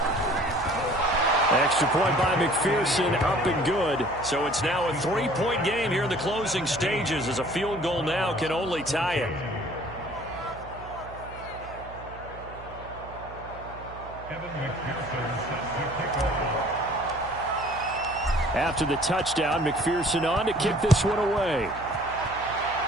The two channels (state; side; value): noise; right; hum, 16 dB below the sound